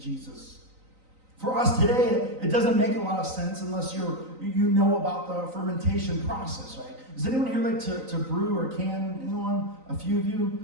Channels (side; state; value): left; late; 3.9 ms